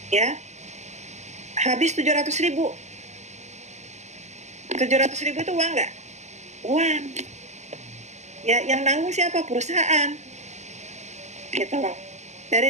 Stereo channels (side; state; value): left; late; 0.33 ms